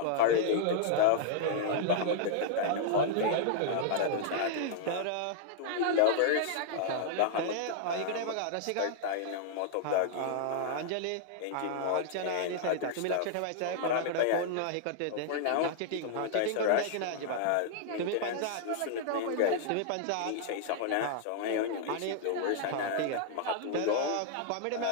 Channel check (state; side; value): different; both; correlation -0.01